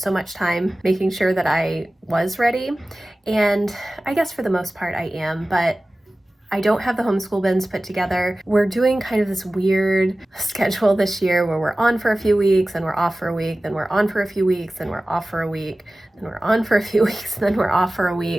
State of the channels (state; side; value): normal; both; correlation 0.97